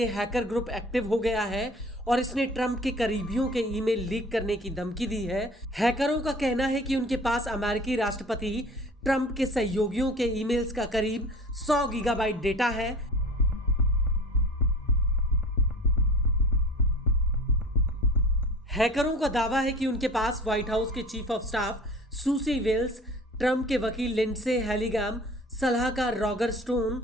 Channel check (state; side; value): normal; both; correlation 0.41